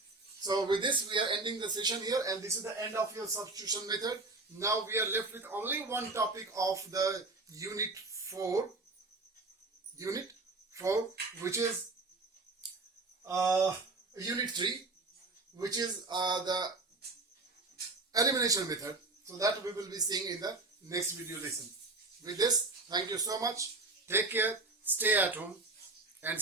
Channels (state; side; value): quieter; left; 3.3 dB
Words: So with this, we are ending the session here, and this is the end of your substitution method. Now we are left with only one topic of the unit 4, which is unit 3, which is the elimination method. So that we will be seeing in the next video lesson. With this, thank you so much. Take care, stay at home and